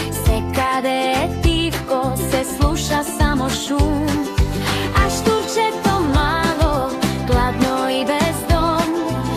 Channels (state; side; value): identical; both; correlation 1.00